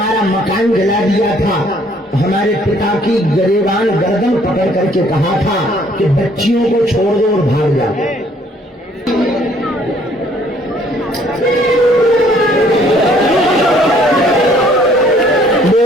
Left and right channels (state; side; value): normal; both; correlation 0.61